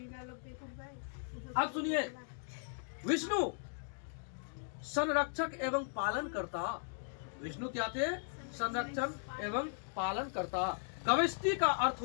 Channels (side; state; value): right; silent; digital silence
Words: अब सुनिए, विष्णु संरक्षक एवं पालन करता। विष्णु क्या थे? संरक्षण एवं पालन करता। गविष्टि का अर्थ